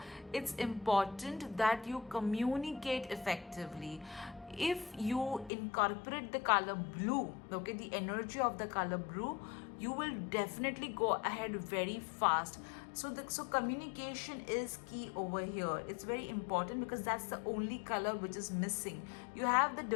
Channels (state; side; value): drops out; right; at 5.5 s